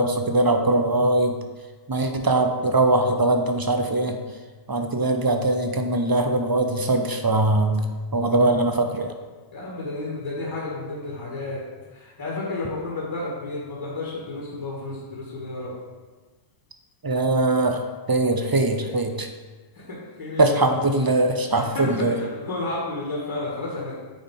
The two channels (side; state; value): left; late; 1.0 ms